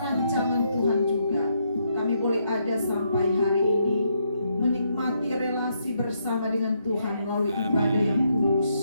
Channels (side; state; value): both; inverted; correlation -0.77